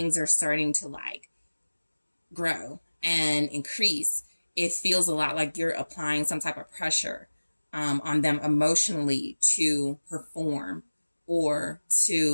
are starting to like grow and increase, it feels a lot like you're applying some type of pressure on them emotionally to perform or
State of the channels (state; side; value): inverted; both; correlation -1.00